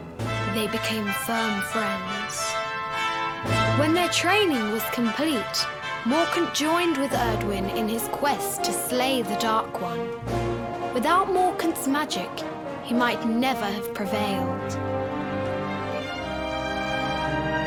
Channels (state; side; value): identical; both; correlation 1.00